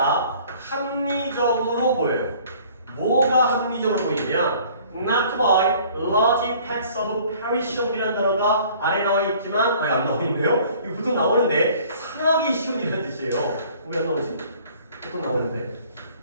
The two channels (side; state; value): both; inverted; correlation -0.53